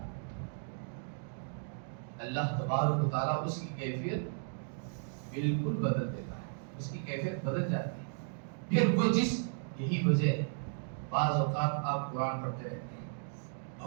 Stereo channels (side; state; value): left; silent; digital silence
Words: اللہ تبارک و تعالیٰ اس کی کیفیت بالکل بدل دیتا ہے, اس کی کیفیت بدل جاتی ہے. پھر وہ یہی وجہ ہے بعض اوقات آپ قرآن پڑھتے رہتے ہیں,